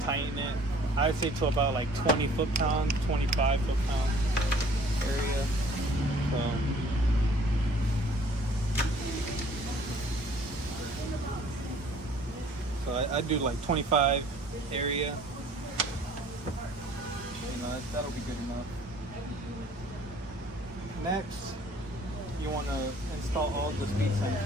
tighten it. I'd say to about like 20 foot-pounds, 25 foot-pound area. So I do like 25 area. You know, that'll be good enough. Next, you want to install all the speed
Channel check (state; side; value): normal; both; correlation 0.54